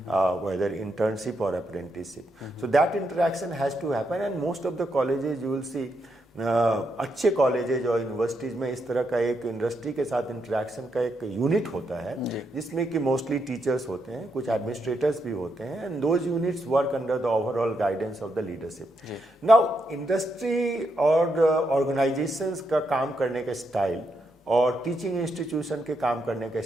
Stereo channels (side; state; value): both; normal; correlation 0.81